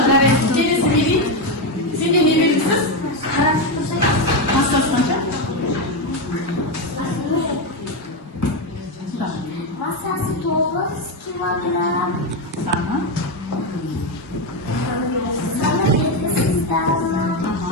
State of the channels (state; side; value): normal; both; correlation 0.09